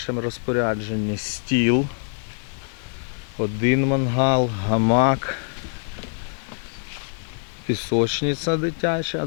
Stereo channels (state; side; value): silent; right; 60 dB below the other